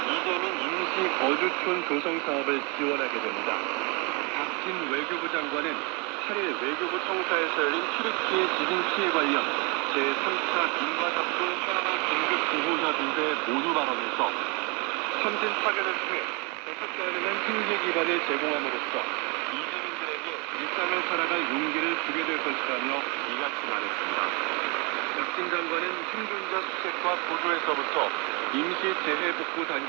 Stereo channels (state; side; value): quieter; left; 30.9 dB